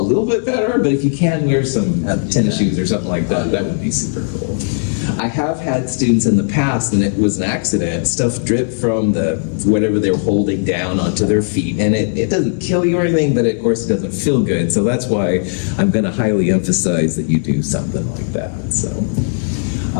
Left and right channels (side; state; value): right; silent; digital silence